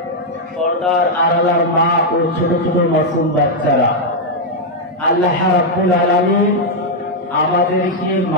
পর্দার আড়ালার মা ও ছোট ছোট মাসুম বাচ্চারা, আল্লাহ রাব্বুল আলামিন আমাদেরকে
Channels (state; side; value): normal; both; correlation -0.01